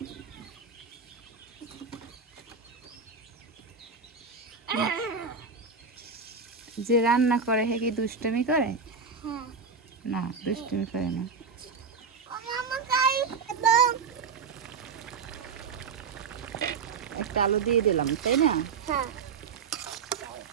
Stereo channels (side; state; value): left; quieter; 5.3 dB